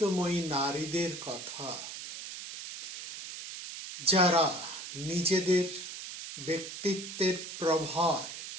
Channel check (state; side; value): noise; right; hiss, 9 dB below the sound